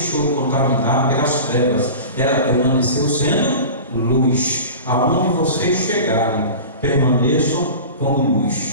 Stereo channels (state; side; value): inverted; both; correlation -0.35